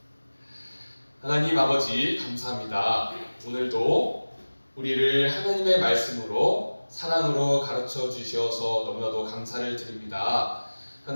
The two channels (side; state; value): both; inverted; correlation -1.00